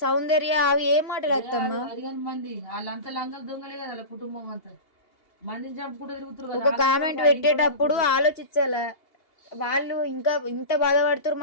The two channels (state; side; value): late; right; 2.8 ms